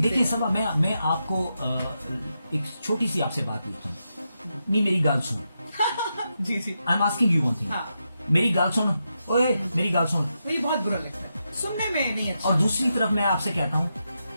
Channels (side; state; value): both; inverted; correlation -0.86